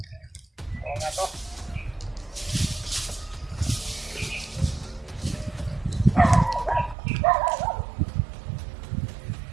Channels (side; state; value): left; drops out; at 7.0 s